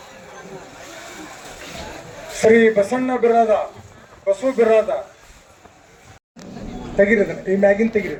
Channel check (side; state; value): both; identical; correlation 1.00